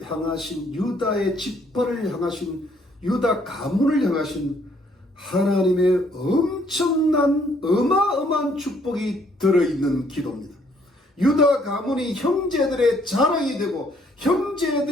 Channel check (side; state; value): both; normal; correlation 0.66